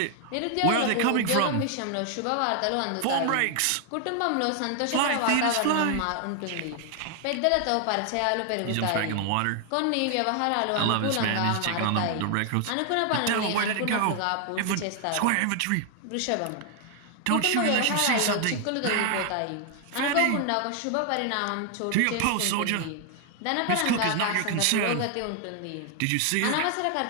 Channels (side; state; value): both; different; correlation 0.00